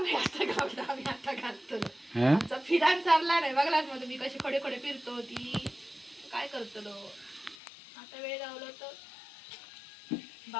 आता घालतो, आम्ही आता घालतो. हं? आमचा फिरान चालला नाही बघलाच मग तुम्ही कशी खडे खडे फिरतो ती काय करतलो. आता वेळ गावलो तर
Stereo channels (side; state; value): right; drops out; at 7.6 s